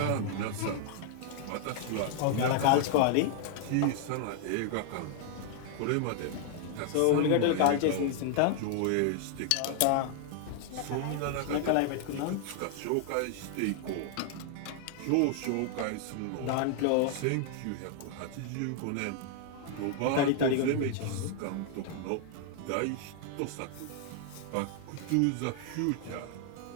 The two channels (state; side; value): different; both; correlation 0.00